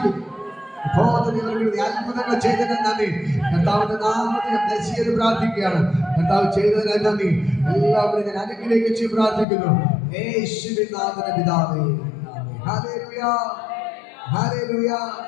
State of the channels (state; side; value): drops out; right; at 9.5 s